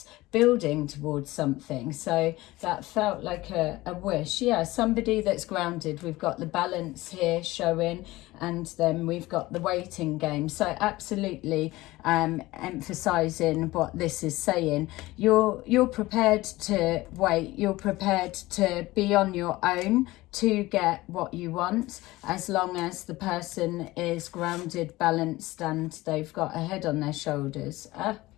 building towards something. So that felt like a wish. Yeah, somebody that's grounded. We've got the Balance here showing, and then we've got the Waiting game. So absolutely emphasizing what this is saying. You're prepared to wait. You're prepared to be on your own to get what you want, as long as the person is grounded, balanced, and they've got a head on their shoulders.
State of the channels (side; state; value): right; quieter; 19.0 dB